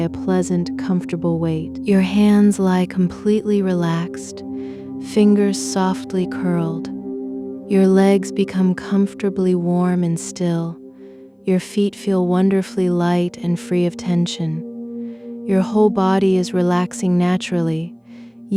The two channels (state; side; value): identical; both; correlation 1.00